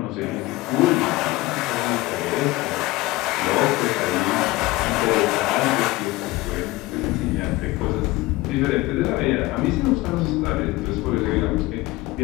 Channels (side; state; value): right; quieter; 19.6 dB